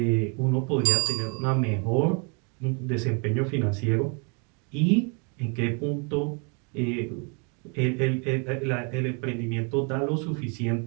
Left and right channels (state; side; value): quieter; left; 36.0 dB